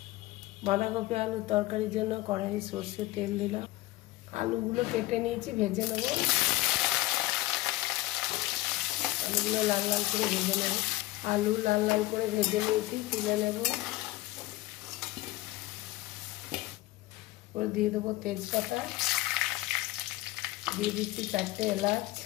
বাঁধাকপি আলু তরকারির জন্য কড়াই সরষের তেল দিলাম। আলুগুলো কেটে নিয়েছি, ভেজে নেব। আলুগুলো লাল লাল করে ভেজে নেব। আলু লাল লাল করে ভেজে নিয়েছি, তুলে নেব। ওর দিয়ে দেবো তেজপাতা, দিয়ে দিচ্ছি 4টে এলাচ,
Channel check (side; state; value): right; quieter; 18.1 dB